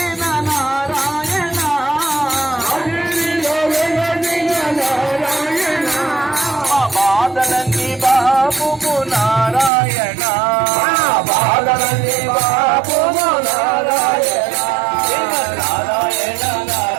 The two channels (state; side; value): drops out; left; at 9.7 s